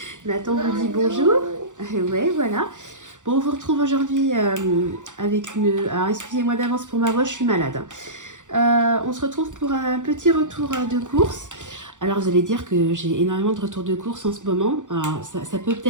Nathan vous dit bonjour. Ouais, voilà. Bon, on vous retrouve aujourd'hui avec une... Alors, excusez-moi d'avance pour ma voix, je suis malade. On se retrouve pour un petit retour de course. Alors, vous allez dire que j'ai énormément de retours de course en ce moment. Alors, ça peut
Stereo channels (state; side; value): late; left; 0.86 ms